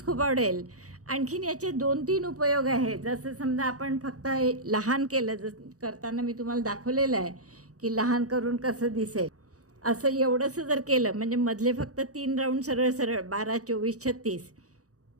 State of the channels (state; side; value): late; left; 0.66 ms